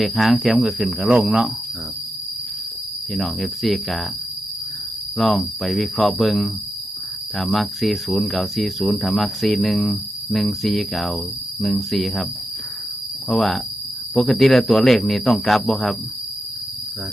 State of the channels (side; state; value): both; normal; correlation 0.87